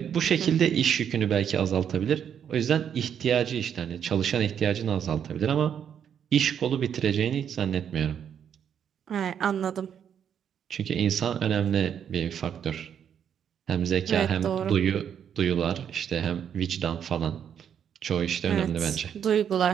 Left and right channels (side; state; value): left; quieter; 8.5 dB